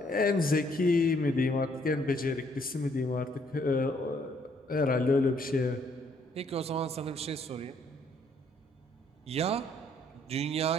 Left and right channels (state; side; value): normal; both; correlation 0.67